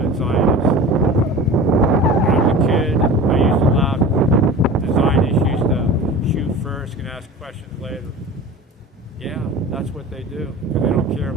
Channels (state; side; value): normal; both; correlation 0.36